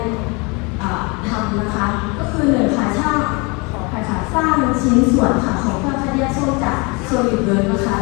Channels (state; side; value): quieter; right; 29.1 dB